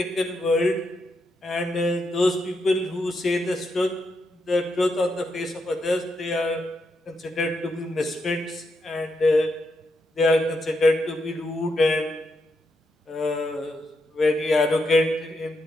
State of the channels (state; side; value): normal; both; correlation 0.82